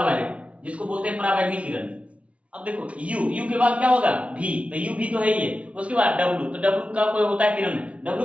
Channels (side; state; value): left; late; 0.063 ms